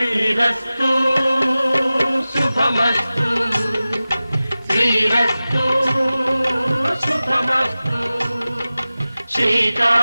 శుభమస్తు, శ్రీరస్తు శుభమస్తు.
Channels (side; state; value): both; inverted; correlation -0.96